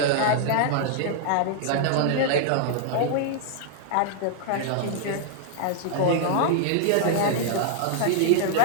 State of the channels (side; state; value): both; different; correlation 0.00